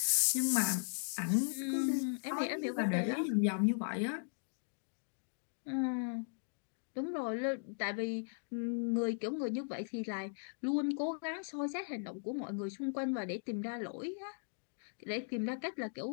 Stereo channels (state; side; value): silent; right; digital silence